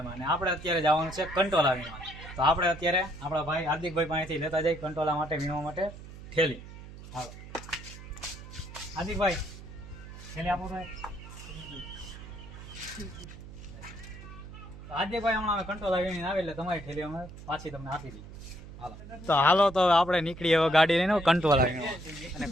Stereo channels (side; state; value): right; noise; hum, 14 dB below the sound